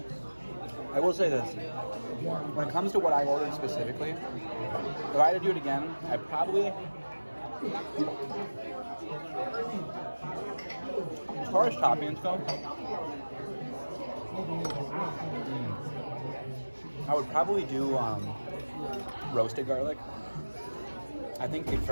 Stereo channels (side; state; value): both; inverted; correlation -1.00